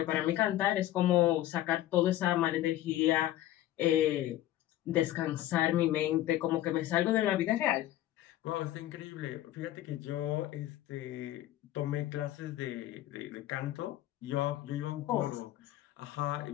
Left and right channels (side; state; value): right; quieter; 14.0 dB